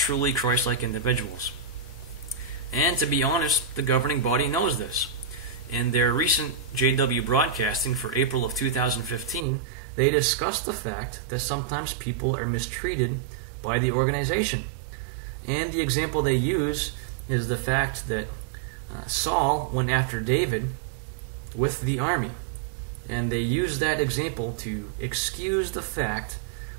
Christ-like individuals. And to be honest, the governing body knows this. In their recent JW broadcasting for April of 2015, they discussed the fact that sometimes people are mistreated by the organization. And the example they use is the fact that Saul went after David with the army. And they use that example to excuse the fact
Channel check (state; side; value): drops out; left; at 9.5 s